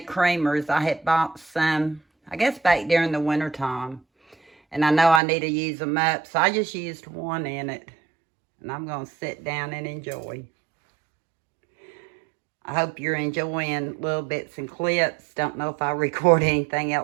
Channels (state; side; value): drops out; left; at 5.2 s